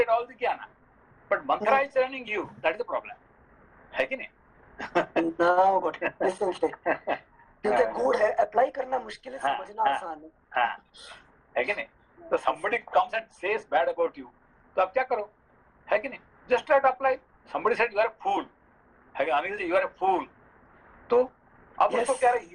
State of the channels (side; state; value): both; identical; correlation 1.00